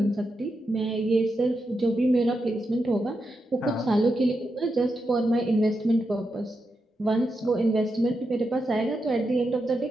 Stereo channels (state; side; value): normal; both; correlation 0.86